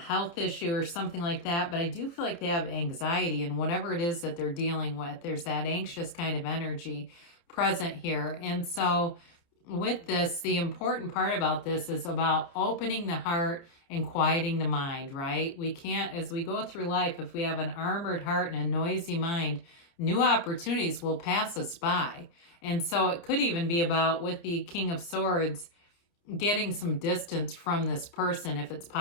issue or something like that. But I do feel like they have anxiety, and whatever it is that they're dealing with, there's that anxious kind of energy present here. And so with this, the important part about this is about opening the heart and quieting the mind, right? We can't, as we go through life, if we have an armored heart and a noisy mind, new opportunities will pass us by. And so it could even be about, with the King of Swords, getting some distance from this person if it's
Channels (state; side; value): late; right; 29 ms